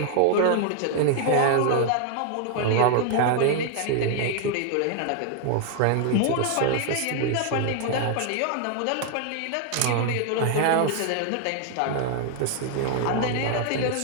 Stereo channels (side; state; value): both; different; correlation 0.00